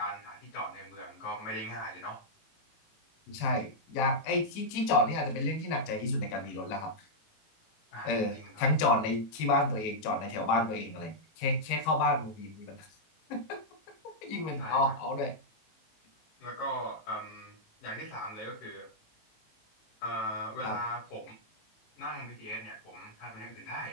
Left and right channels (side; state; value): right; late; 19 ms